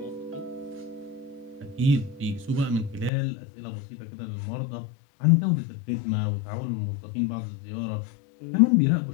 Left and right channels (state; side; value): drops out; right; at 3.1 s